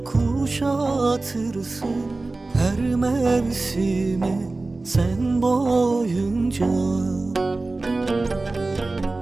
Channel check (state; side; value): quieter; left; 3.3 dB